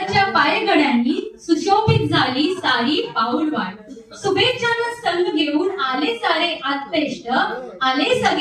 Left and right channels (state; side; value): identical; both; correlation 1.00